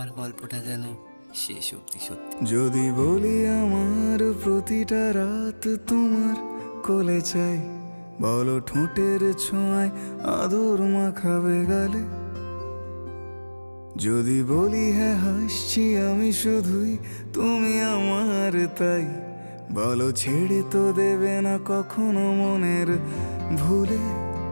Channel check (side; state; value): both; inverted; correlation -1.00